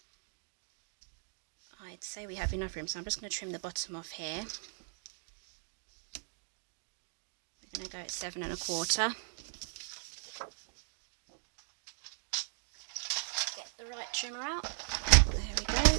I'd say we have enough room, so I'm just going to trim the bottom off here. I'm going to go at 7 1/4. Get the right trimmer out. There we go.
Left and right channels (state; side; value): silent; left; 53 dB below the other